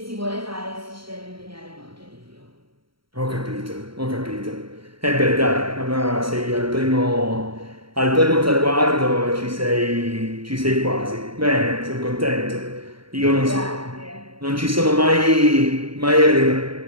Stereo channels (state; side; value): late; left; 0.74 ms